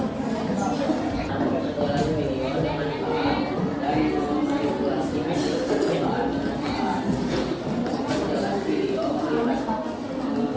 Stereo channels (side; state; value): both; identical; correlation 1.00